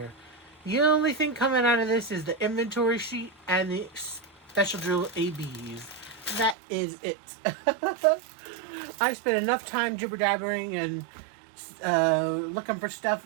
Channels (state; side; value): drops out; left; at 6.6 s